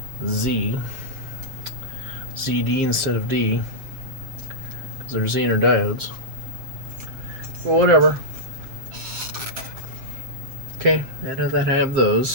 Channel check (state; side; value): late; left; 7.6 ms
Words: ZD instead of D, because they're Zener diodes. Well, whatever. Okay, I know that I have